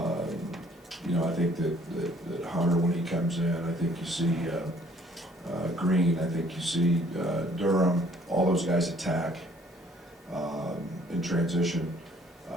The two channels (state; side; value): normal; both; correlation 0.60